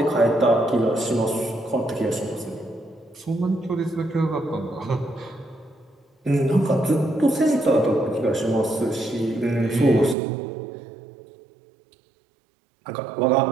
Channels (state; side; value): drops out; left; at 10.2 s